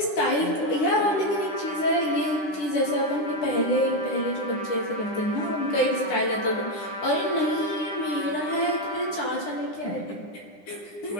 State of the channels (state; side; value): late; right; 9.9 ms